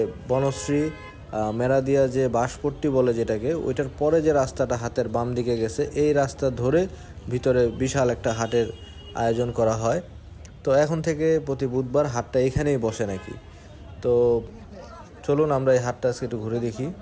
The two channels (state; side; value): identical; both; correlation 1.00